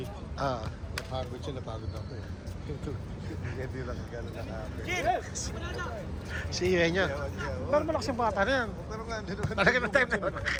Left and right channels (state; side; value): identical; both; correlation 1.00